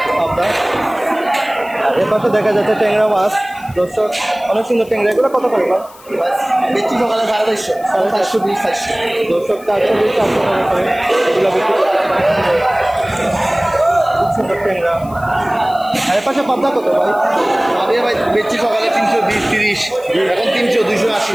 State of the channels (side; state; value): left; noise; hiss, 24 dB below the sound